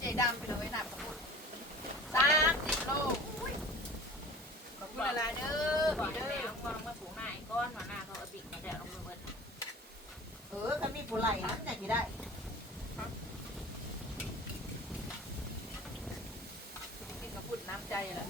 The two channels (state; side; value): normal; both; correlation 0.41